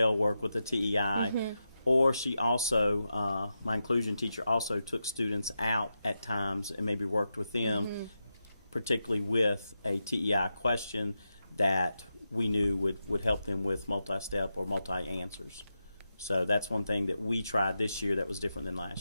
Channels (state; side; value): inverted; both; correlation -0.89